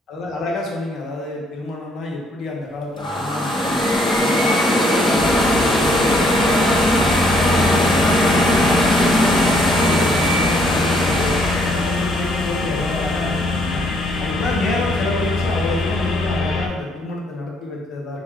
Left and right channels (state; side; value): normal; both; correlation 0.67